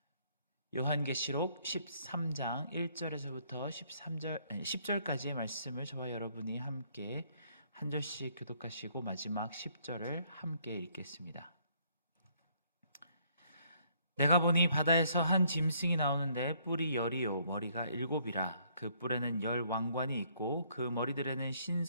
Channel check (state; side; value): inverted; both; correlation -0.66